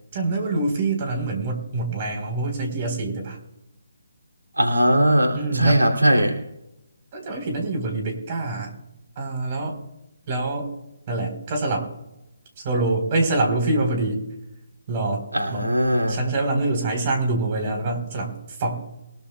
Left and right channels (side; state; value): both; inverted; correlation -0.73